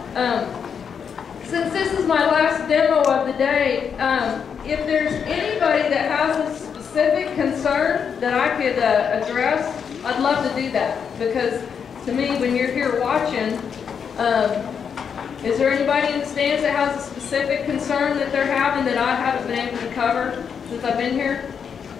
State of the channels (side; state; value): right; quieter; 7.0 dB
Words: Since this is my last demo of the day, if there's anybody that has a specific concern that I could address, I'd love to do that. Because to me, when you're here watching, is there anybody in the stands that has a specific concern that they're having that I haven't been able to cover since I've been here?